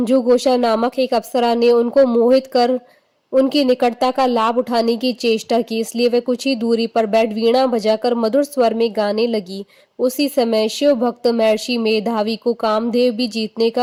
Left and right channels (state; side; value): identical; both; correlation 1.00